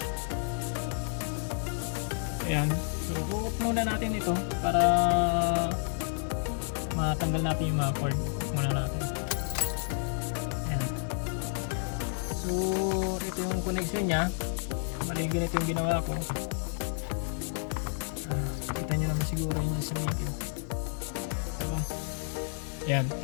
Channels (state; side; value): silent; right; 57 dB below the other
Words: Ayan. So off muna natin ito para matanggal natin yung mga cord. Off muna natin. Ayan. So ito yung connection niya. Bali ganito yung ginawa ko. Kita nyo naman siguro yung sa video. Yan,